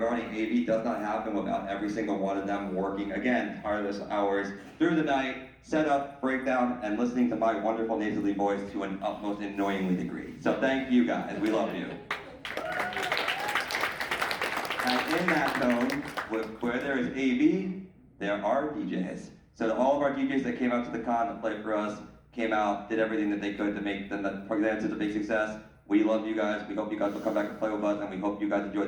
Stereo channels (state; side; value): identical; both; correlation 1.00